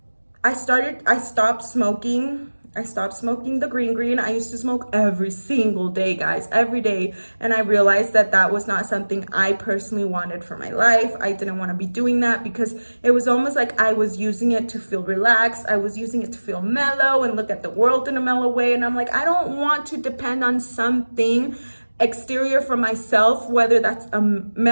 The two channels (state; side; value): inverted; both; correlation -1.00